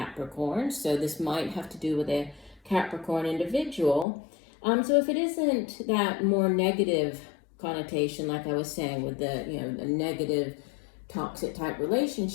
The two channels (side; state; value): right; drops out; at 4.0 s